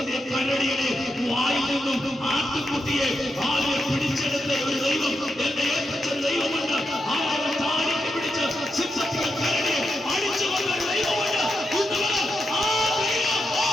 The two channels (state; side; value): normal; both; correlation 0.85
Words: കരടിയുടെ വായിൽ നിന്നും ആട്ടുകുട്ടിയെ ആളുകൾ പിടിച്ചെടുത്ത ഒരു ദൈവം, എന്റെ ഏറ്റവും ദൈവമുണ്ട്. ആളുകളെ താടിക്ക് പിടിച്ച് സിംഹത്തിന്റെ കരടിയെ അടിച്ചു കൊണ്ട ഒരു ദൈവമുണ്ട്.